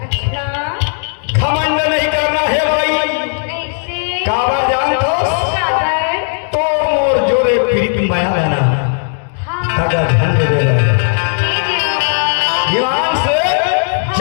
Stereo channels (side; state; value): right; silent; 70 dB below the other